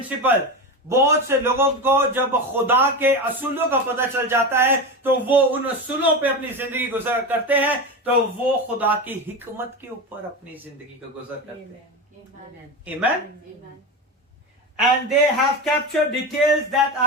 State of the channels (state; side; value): normal; both; correlation 0.21